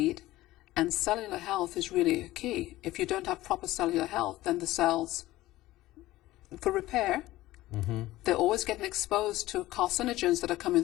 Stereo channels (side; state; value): right; quieter; 16.8 dB